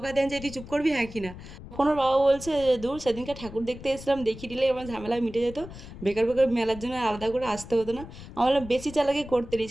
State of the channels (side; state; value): left; noise; rumble, 14 dB below the sound